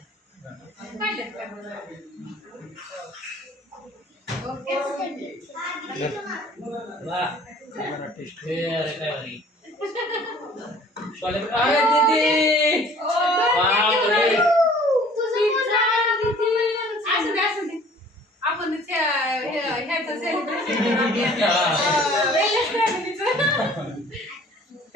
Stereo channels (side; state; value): both; normal; correlation 0.52